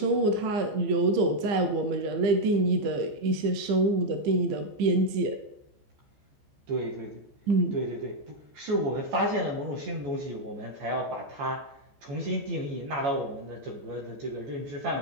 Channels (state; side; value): late; left; 14 ms